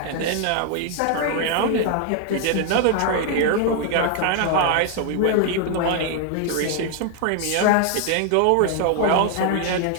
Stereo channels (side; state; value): both; different; correlation 0.00